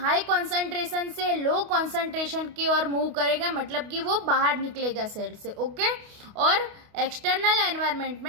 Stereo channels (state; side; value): late; left; 28 ms